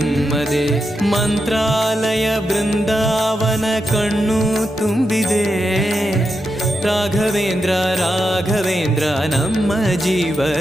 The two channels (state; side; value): normal; both; correlation 0.86